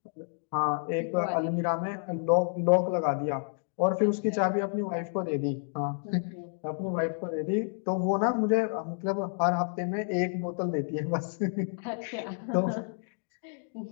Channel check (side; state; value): right; silent; 58 dB below the other